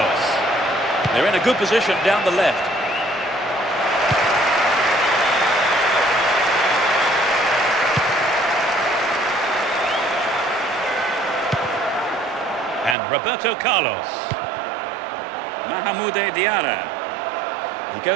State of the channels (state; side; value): drops out; left; at 13.0 s